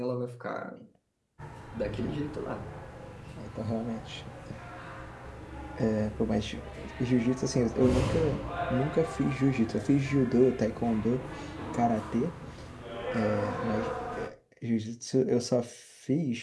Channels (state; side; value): identical; both; correlation 1.00